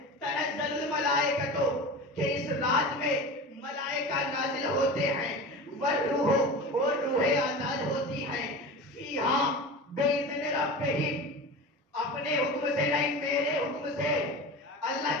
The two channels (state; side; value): normal; both; correlation 0.31